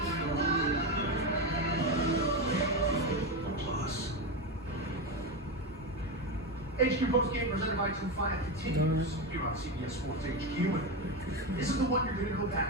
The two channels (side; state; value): both; normal; correlation 0.14